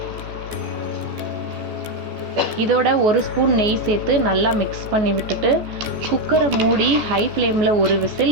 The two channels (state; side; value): late; left; 14 ms